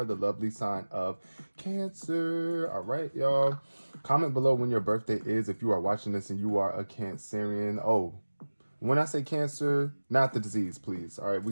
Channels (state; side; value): inverted; both; correlation -1.00